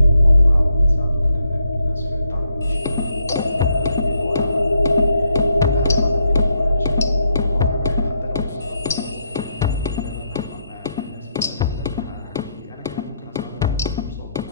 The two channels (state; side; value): inverted; both; correlation -0.77